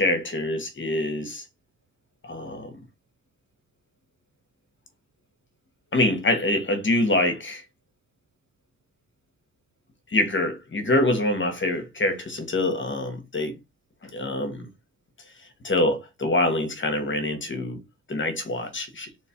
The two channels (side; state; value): both; normal; correlation 0.18